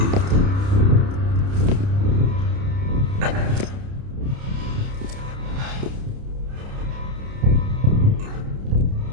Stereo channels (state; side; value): late; left; 30 ms